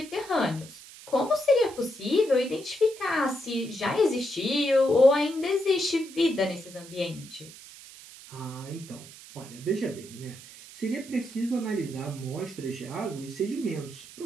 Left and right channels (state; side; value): noise; right; hiss, 18 dB below the sound